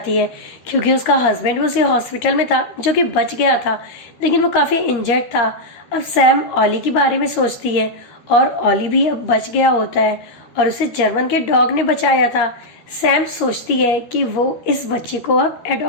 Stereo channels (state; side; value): late; right; 13 ms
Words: है, क्योंकि उसका हस्बैंड भी उसी हॉस्पिटल में था जो कि बच गया था, लेकिन वो काफी इंजर्ड था। अब सैम ऑली के बारे में सोचती है और ऑली भी अब बच गया होता है और उसे जर्मन के डॉग ने बचाया था। सैम सोचती है कि वो इस बच्चे को अब